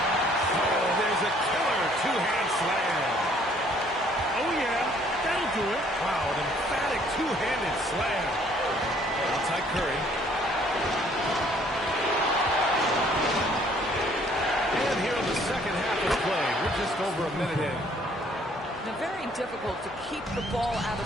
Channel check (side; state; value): both; normal; correlation 0.61